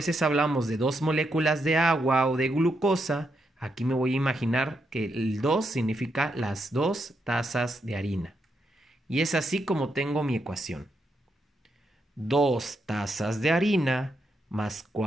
hablamos de 2 moléculas de agua o de glucosa, aquí me voy a imaginar que el 2 significa las 2 tazas de harina. Y es así como tengo mi ecuación. 2 tazas de harina más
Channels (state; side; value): normal; both; correlation 0.81